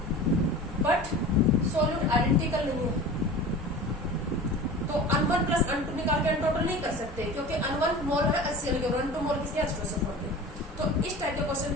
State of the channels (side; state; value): both; normal; correlation 0.36